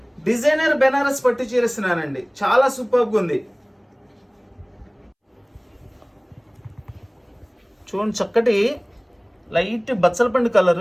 డిజైనర్ బెనారస్ పట్టు చీర ఇస్తున్నానండి. చాలా సూపర్గా ఉంది. చూడండి, చక్కటి లైట్ బచ్చలపండు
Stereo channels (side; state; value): both; identical; correlation 1.00